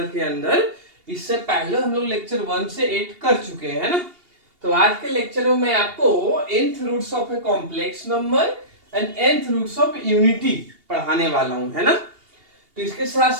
के अंदर। इससे पहले हम लोग लेक्चर 1 से 8 कर चुके हैं, है ना। तो आज के लेक्चर में मैं आपको nth roots of a complex number and nth roots of unity पढ़ाने वाला हूं, है ना। तो इसके साथ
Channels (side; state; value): left; late; 2.8 ms